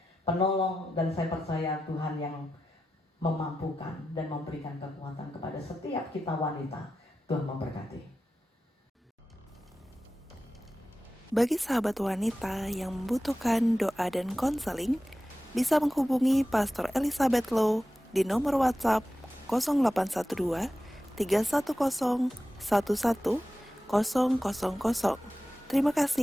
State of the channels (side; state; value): both; normal; correlation 0.92